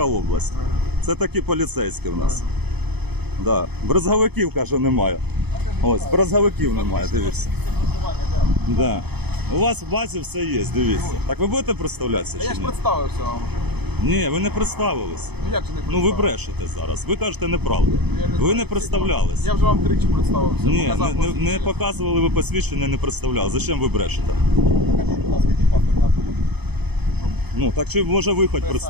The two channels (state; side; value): late; left; 0.98 ms